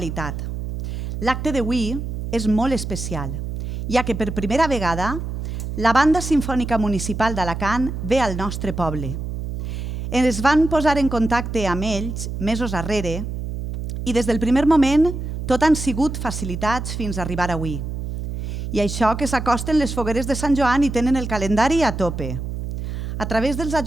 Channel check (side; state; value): right; noise; hum, 5 dB below the sound